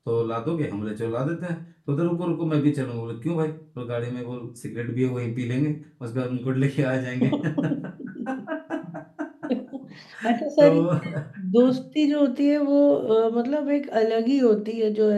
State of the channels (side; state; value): both; identical; correlation 1.00